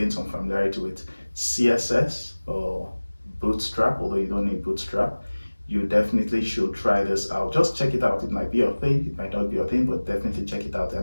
some familiarity with CSS or Bootstrap, although you don't need Bootstrap, you definitely should try this out. Just check it out. It might be your thing, it might not be your thing, but definitely check it out.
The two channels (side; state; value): both; inverted; correlation -1.00